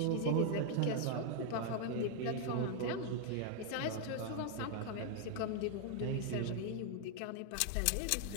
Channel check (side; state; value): both; different; correlation 0.00